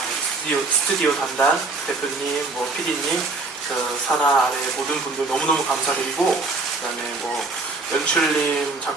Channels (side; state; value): left; quieter; 3.6 dB